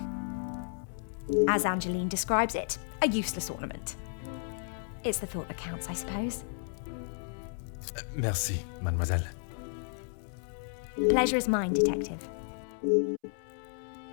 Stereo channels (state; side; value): silent; right; 56 dB below the other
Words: As Angeline describes it, a useless ornament. It's the thought that counts, I suppose. Merci, mademoiselle. Pleasure is mine, detective.